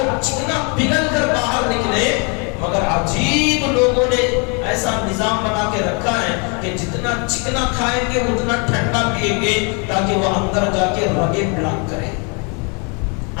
چکنا پگھل کر باہر نکلے، مگر عجیب لوگوں نے ایسا نظام بنا کے رکھا ہے کہ جتنا چکنا کھائیں گے اتنا ٹھنڈا پیئیں گے تاکہ وہ اندر جا کے رگیں بلاک کرے،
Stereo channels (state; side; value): quieter; right; 34.5 dB